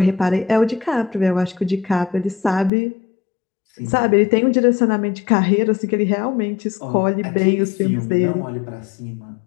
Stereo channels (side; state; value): right; drops out; at 2.7 s